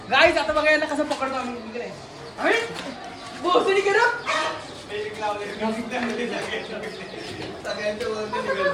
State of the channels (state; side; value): identical; both; correlation 1.00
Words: गाईज आता बघा यांना कसं पकडतो आम्ही. बोसडी केलं.